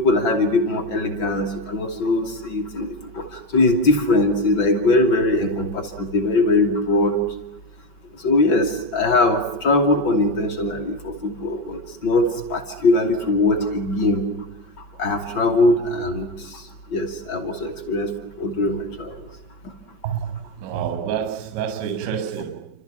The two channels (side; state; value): right; late; 6.0 ms